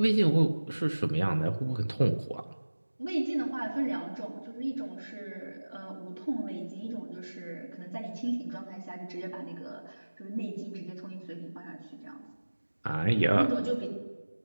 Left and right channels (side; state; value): both; inverted; correlation -1.00